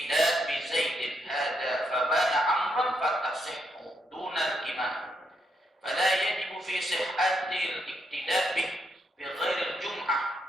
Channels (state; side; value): normal; both; correlation 0.78